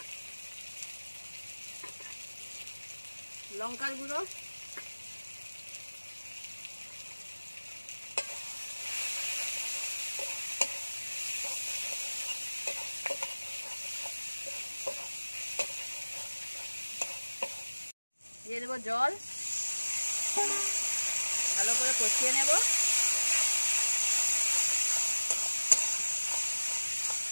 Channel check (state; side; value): inverted; both; correlation -1.00